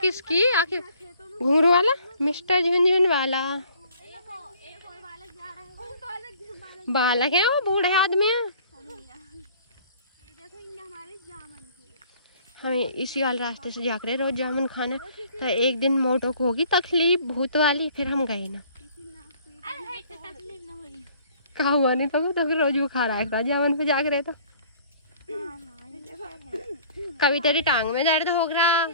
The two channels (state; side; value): inverted; both; correlation -0.55